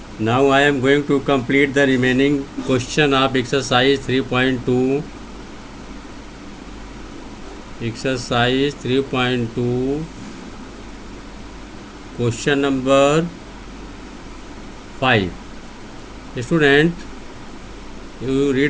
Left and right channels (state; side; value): identical; both; correlation 1.00